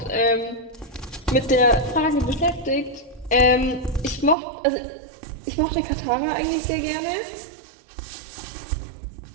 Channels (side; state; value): left; drops out; at 4.4 s